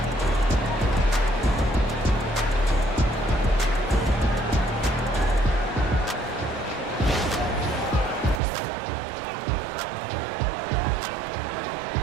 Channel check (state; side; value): drops out; left; at 8.4 s